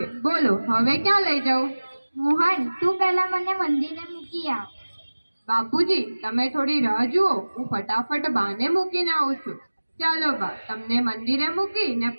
બોલો હવે ક્યાં લઈ જાઉં? મોહન, તું પહેલા મને મંદિરે મૂકી આવ. બાપુજી તમે થોડી રાહ જુઓ, હું ફટાફટ બાને મૂકીને આવું છું. ચાલો બા, તમને મંદિરે મૂકી ને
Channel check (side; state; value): both; inverted; correlation -1.00